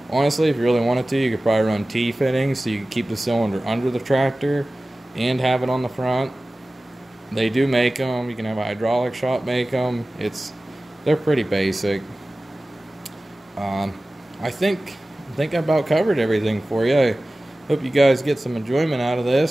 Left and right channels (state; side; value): normal; both; correlation 0.97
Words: honestly, if you really wanted to, you could probably run T-fittings so you can keep the cylinder under the tractor and have it on the front. They do make them. You can have a hydraulic shop make them. They're pretty basic. I think I about covered everything for you. I hope you guys get some enjoyment out of